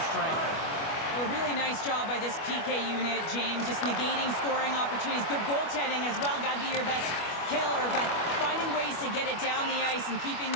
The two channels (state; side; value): late; right; 25 ms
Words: strength. Well, a really nice job by this PK unit, James. Just negating scoring opportunities. Good goaltending as well. Got to be your best killer, but finding ways to get it down the ice and keeping